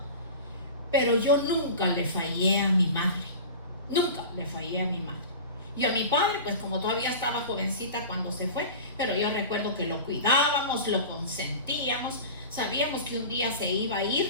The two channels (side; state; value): both; inverted; correlation -0.34